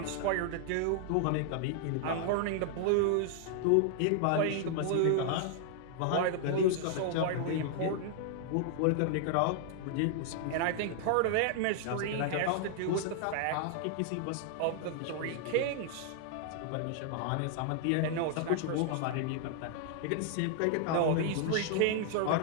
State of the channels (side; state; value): both; different; correlation 0.00